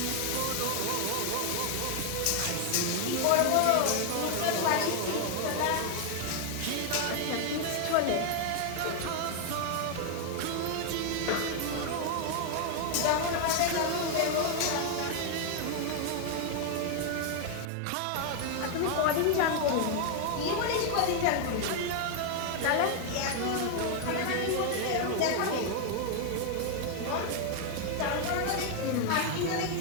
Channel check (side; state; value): both; different; correlation 0.00